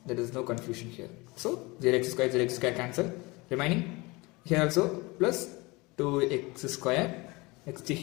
There is no confusion here. So 0x square cancel. Remaining here also plus 2x square. Next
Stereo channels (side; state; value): right; quieter; 24.3 dB